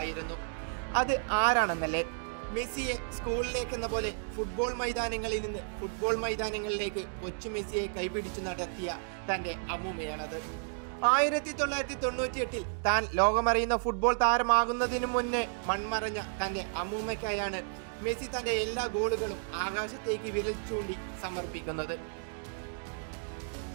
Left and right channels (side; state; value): left; silent; digital silence